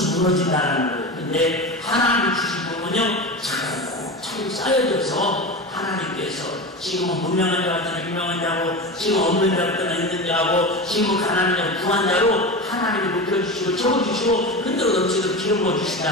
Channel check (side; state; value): both; normal; correlation 0.25